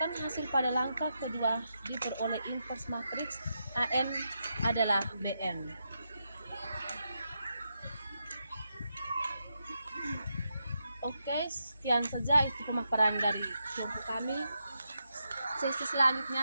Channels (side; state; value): both; inverted; correlation -0.84